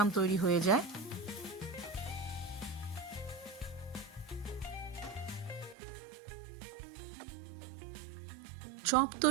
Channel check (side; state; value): left; drops out; at 5.8 s